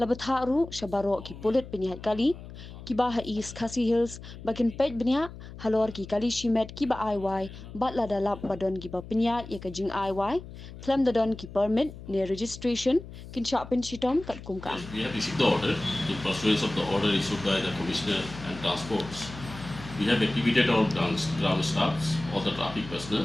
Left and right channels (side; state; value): left; noise; hum, 14 dB below the sound